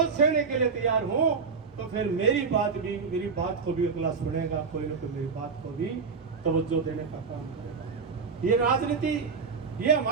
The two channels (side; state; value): left; quieter; 5.2 dB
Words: सहने के लिए तैयार हूं, तो फिर मेरी बात को भी अगला सुनेगा, कोई ना कोई मेरी बात को भी तवज्जो देने का काम करेगा। ये राजनीति, ये